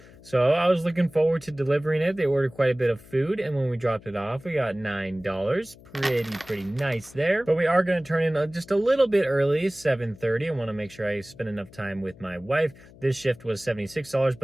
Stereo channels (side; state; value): left; noise; hum, 22 dB below the sound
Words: So I was looking forward to delivering it. They ordered quite a bit of food, and when we dropped it off, we got $9. Pretty nice there. But we are going to turn in just a little bit early, 7:30. I want to make sure I spend enough time with my wife. This shift was $76,